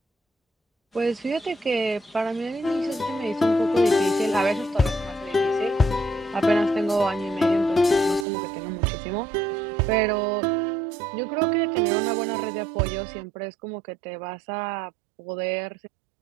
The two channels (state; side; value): drops out; left; at 8.2 s